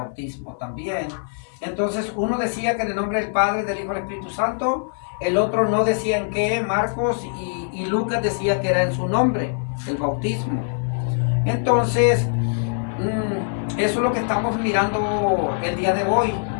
también. Entonces, uno decía que en el nombre del Padre, del Hijo y del Espíritu Santo, el otro no decía en qué, Marcos y Lucas decía que era en su nombre, el bautismo. Entonces, eso es lo que estamos mirando el día de hoy,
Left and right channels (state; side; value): silent; right; 56 dB below the other